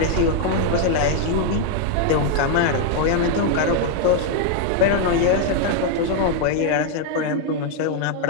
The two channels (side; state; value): both; different; correlation 0.00